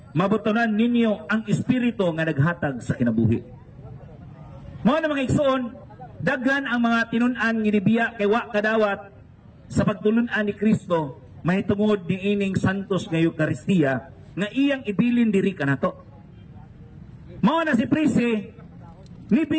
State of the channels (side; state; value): both; identical; correlation 1.00